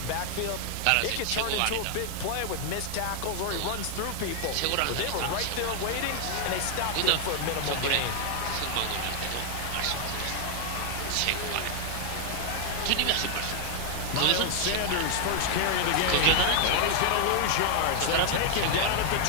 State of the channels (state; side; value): different; both; correlation 0.00